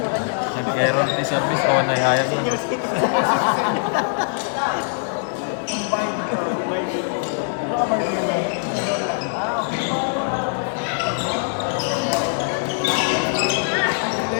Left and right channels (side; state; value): right; silent; 64 dB below the other